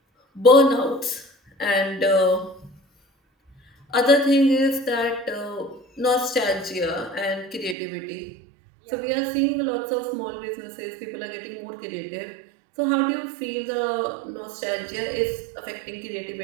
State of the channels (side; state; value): left; drops out; at 7.8 s